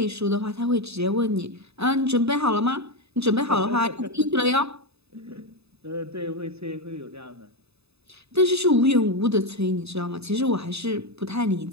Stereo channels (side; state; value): left; late; 0.79 ms